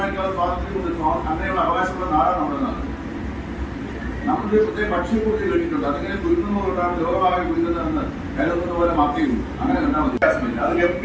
സ്വാതന്ത്ര്യമുണ്ട്. അങ്ങനെയുള്ള അവകാശമുള്ള നാടാണ് നമ്മുടെ നാട്. നമ്മുടെ പ്രത്യേക ഭക്ഷ്യപൂർത്തി കഴിഞ്ഞിട്ടുണ്ട്. അതിങ്ങനെ കുരുന്നതുകൊണ്ടാണ് ലോകമാകെ കുരുന്നതെന്ന് കരുതുന്നത് പോലെ മാത്രമേ അങ്ങനെ കണ്ടാൽ മതി. അത്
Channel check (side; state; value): both; identical; correlation 1.00